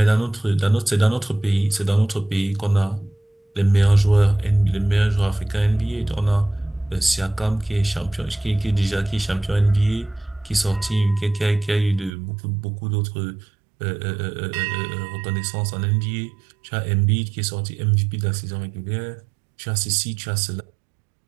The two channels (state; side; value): drops out; left; at 12.1 s